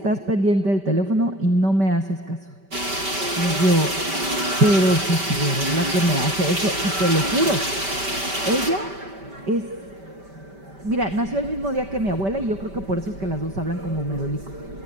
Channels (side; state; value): left; late; 5.1 ms